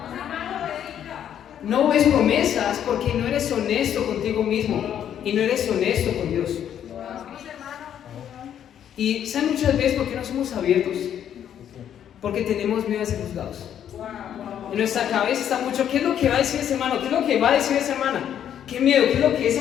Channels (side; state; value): right; quieter; 9.7 dB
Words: No ves promesas porque no eres honesto contigo mismo y no eres honesto con Dios. Y ¿saben muchas veces por qué no somos abiertos? Porque tenemos miedo a ser juzgados. En nuestra cabeza está mucho: ¿qué es lo que va a decir ese hermano? ¿Qué es lo que va a decir esa hermana? ¿Qué miedo? ¿Qué es lo que